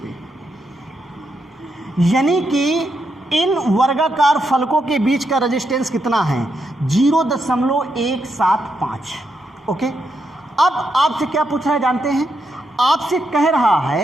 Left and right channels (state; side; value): normal; both; correlation 0.81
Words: यानी कि इन वर्गाकार फलकों के बीच का रेजिस्टेंस कितना है? 0.175, ओके। अब आपसे क्या पूछ रहा है जानते हैं? आपसे कह रहा